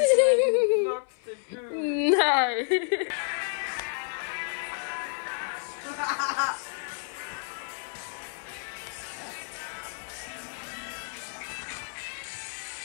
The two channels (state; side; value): silent; right; 58 dB below the other